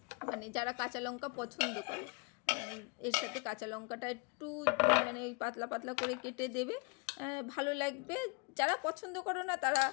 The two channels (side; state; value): right; quieter; 33.6 dB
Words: মানে যারা কাঁচা লঙ্কা পছন্দ করে এর সাথে কাঁচা লঙ্কাটা একটু মানে পাতলা পাতলা করে কেটে দেবে, ভালো লাগবে। যারা পছন্দ করো না তারা